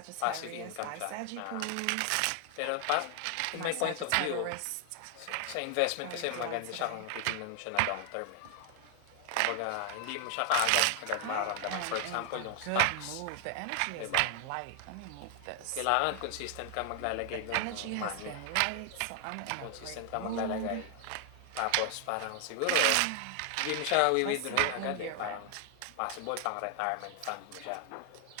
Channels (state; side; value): different; both; correlation 0.00